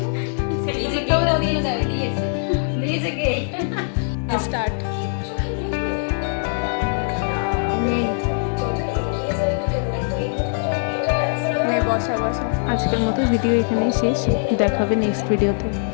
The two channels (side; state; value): right; silent; digital silence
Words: নিজেকেও দিয়েছে কেক। স্টার্ট। বসা বসা। আজকের মতো ভিডিও এখানেই শেষ, দেখা হবে নেক্সট ভিডিওতে।